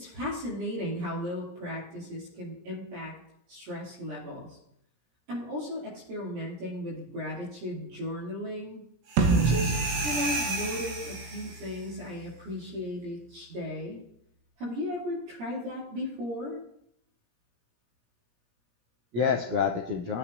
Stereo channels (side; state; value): left; late; 17 ms